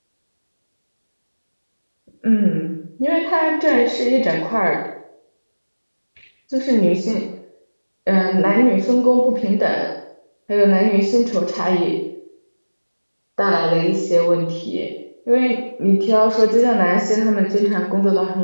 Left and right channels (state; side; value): inverted; both; correlation -1.00